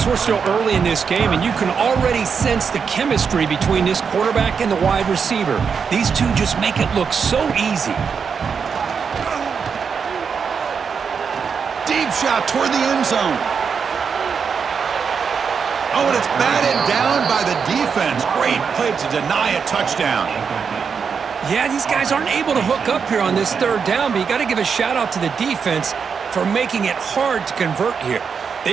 we're still early in this game, and you can already sense the chemistry between this quarterback and the wide receiver. These two just make it look so easy. Deep shot toward the end zone. Oh, and it's batted down by the defense. Great play to deny a touchdown. Yeah, these guys aren't able to hook up here on this 3rd down, but you got to give a shout-out to the defense for making it hard to convert here.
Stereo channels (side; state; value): left; quieter; 6.2 dB